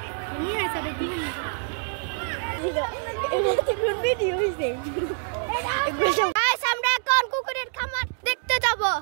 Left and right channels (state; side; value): silent; left; 61 dB below the other